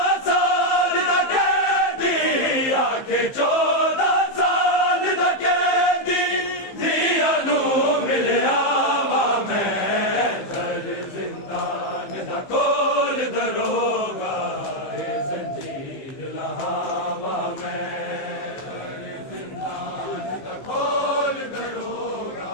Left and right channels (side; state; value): right; late; 15 ms